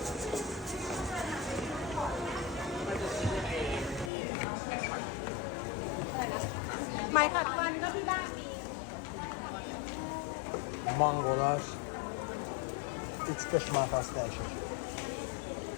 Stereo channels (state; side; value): drops out; right; at 4.1 s